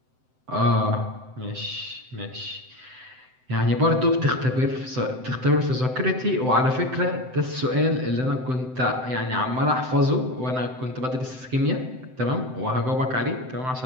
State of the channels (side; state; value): left; late; 7.8 ms